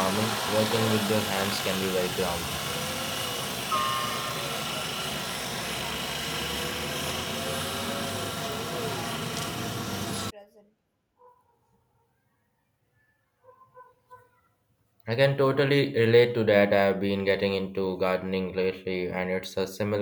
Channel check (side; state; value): both; identical; correlation 1.00